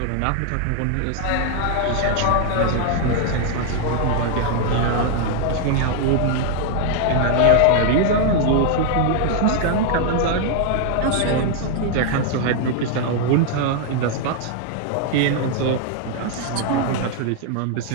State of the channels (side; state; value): both; different; correlation 0.00